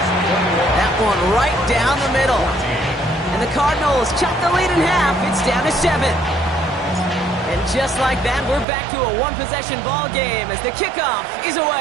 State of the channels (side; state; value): left; drops out; at 8.7 s